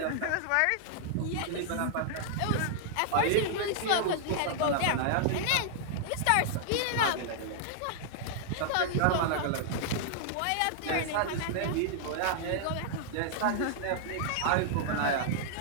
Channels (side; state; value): both; different; correlation -0.01